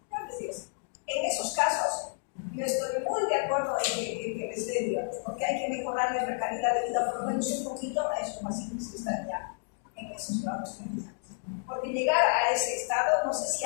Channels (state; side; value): silent; right; digital silence